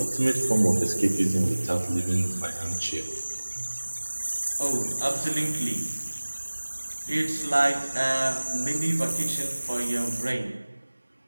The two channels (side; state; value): both; inverted; correlation -1.00